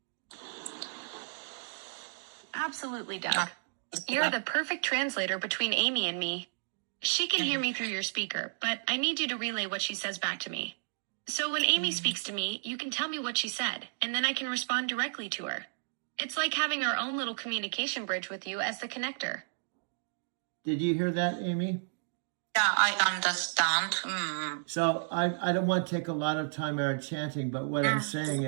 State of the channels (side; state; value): left; silent; digital silence